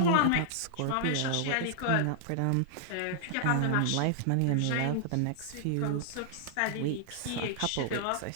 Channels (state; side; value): different; both; correlation -0.01